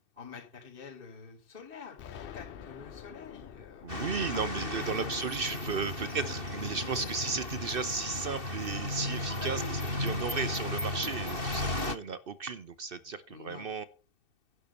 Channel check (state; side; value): late; left; 2.7 ms